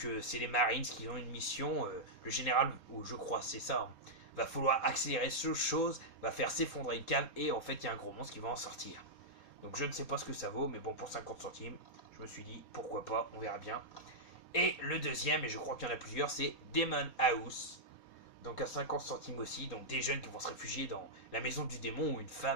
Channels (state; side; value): late; right; 4.5 ms